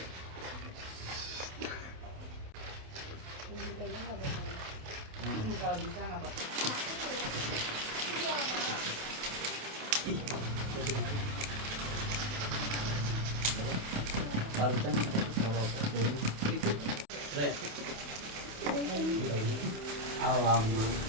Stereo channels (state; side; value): late; left; 28 ms